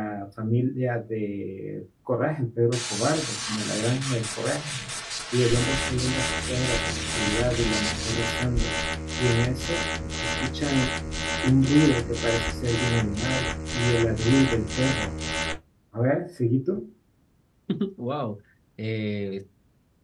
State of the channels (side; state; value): both; identical; correlation 1.00